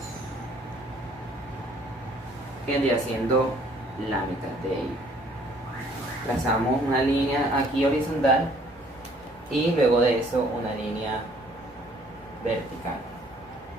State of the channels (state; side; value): normal; both; correlation 0.59